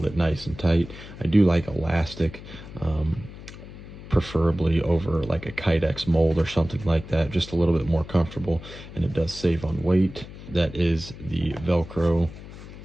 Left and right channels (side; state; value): left; noise; hum, 15 dB below the sound